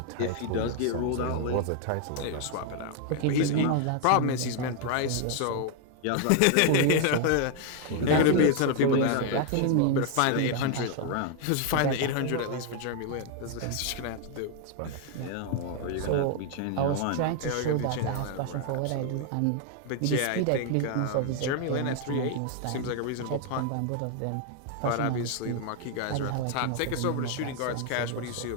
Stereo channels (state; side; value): different; both; correlation 0.00